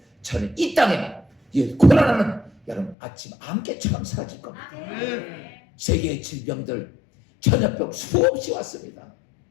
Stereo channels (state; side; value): drops out; right; at 3.0 s